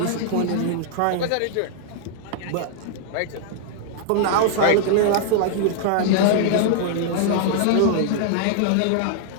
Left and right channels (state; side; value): different; both; correlation -0.01